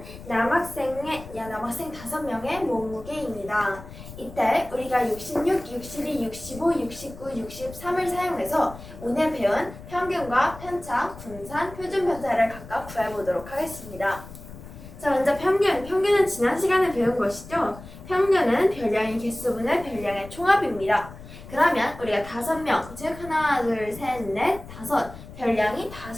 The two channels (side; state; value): left; noise; rumble, 15 dB below the sound